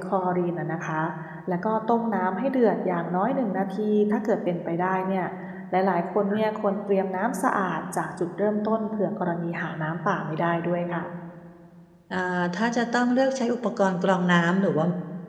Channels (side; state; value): both; identical; correlation 1.00